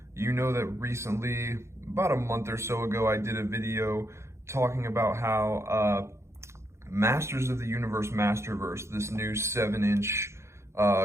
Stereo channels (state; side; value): late; left; 0.13 ms